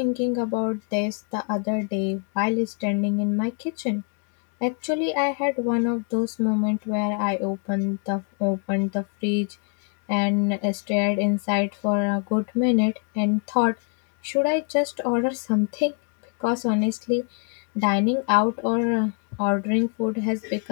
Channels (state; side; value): quieter; right; 38.8 dB